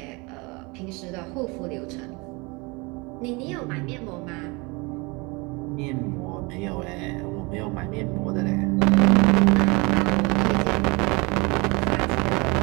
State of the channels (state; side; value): quieter; left; 27.2 dB